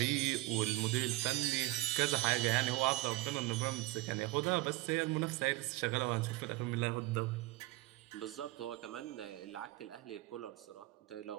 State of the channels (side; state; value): left; quieter; 18.5 dB